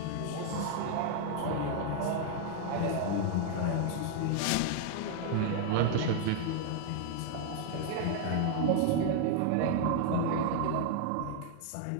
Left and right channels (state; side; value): different; both; correlation 0.00